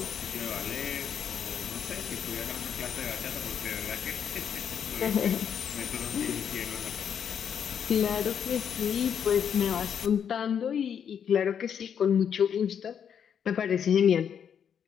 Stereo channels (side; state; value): right; quieter; 8.1 dB